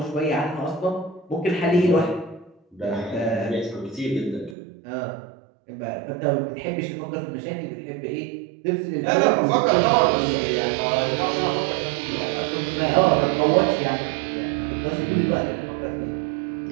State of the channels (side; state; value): left; drops out; at 4.5 s